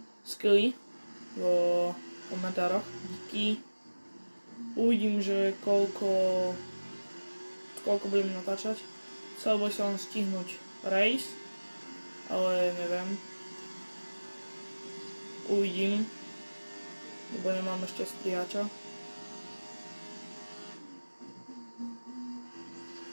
skilly vo komentároch. Díky. Uvidím, že koľko budem natáčať. Chcel by som stihnúť race, ale neviem. Uvidím, lebo nemám ešte strihača.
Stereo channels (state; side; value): inverted; both; correlation -1.00